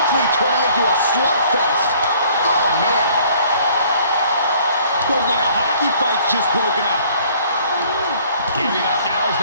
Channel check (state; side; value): inverted; both; correlation -0.57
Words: turning into a slugfest. Oh man. Looks like a hockey fight's just broken out. Giving up now is